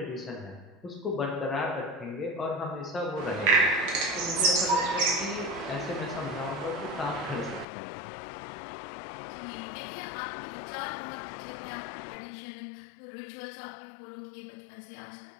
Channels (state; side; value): drops out; right; at 7.7 s